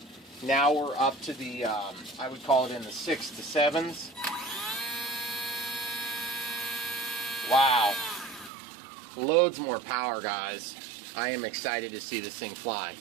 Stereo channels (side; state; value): left; drops out; at 8.5 s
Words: Now we're up to the, I would call it in the 6 to 7s. Wow. Loads more power, guys. I am excited to see this thing fly.